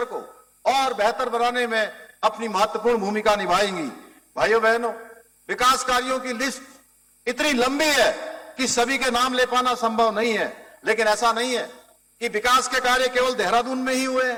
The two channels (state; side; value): identical; both; correlation 1.00